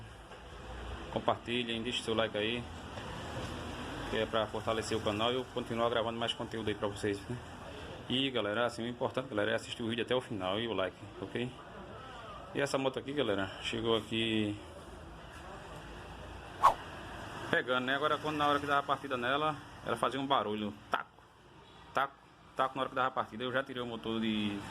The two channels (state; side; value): identical; both; correlation 1.00